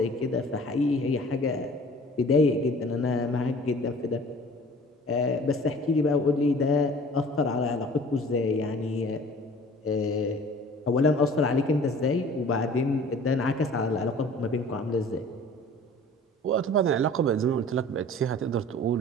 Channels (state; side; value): normal; both; correlation 0.47